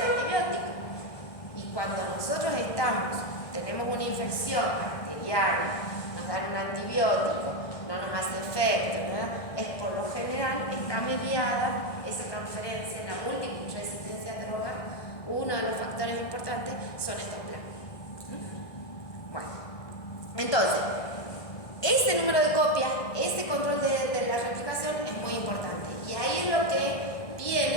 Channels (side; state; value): right; late; 1.6 ms